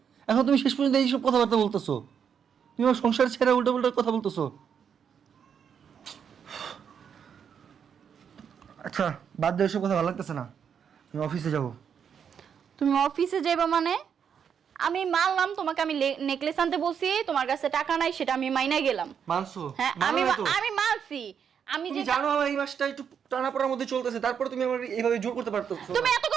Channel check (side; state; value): left; quieter; 7.6 dB